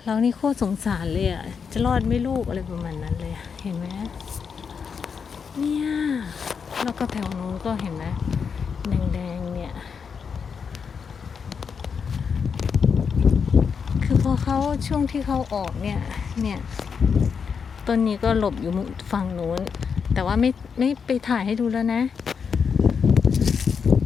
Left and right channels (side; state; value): right; quieter; 6.2 dB